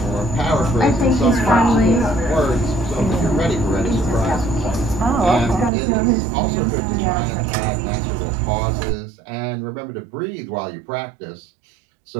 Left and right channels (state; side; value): drops out; left; at 5.7 s